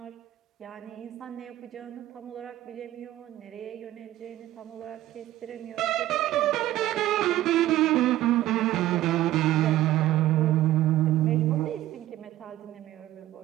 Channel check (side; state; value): left; quieter; 14.6 dB